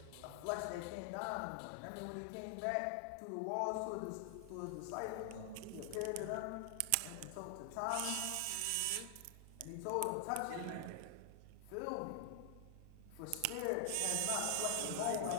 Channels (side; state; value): both; different; correlation 0.00